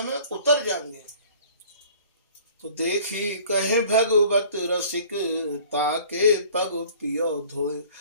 में उतर जाएंगे। तो देखी कहे भगवत रसिक, ताके पग पियो धोए।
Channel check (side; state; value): both; inverted; correlation -0.50